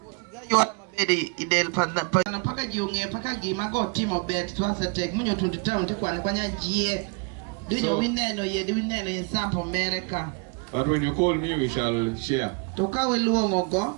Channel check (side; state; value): left; quieter; 33.1 dB